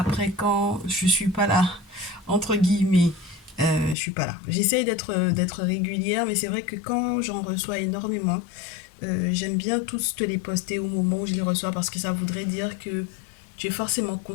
quand je suis pas là, entre guillemets, je suis pas là. J'essaye d'être régulière, mais c'est vrai que quand j'en reçois énormément, j'aime bien tous te les poster au moment où je les reçois parce que ça voudrait dire que tu es forcément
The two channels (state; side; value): drops out; right; at 4.0 s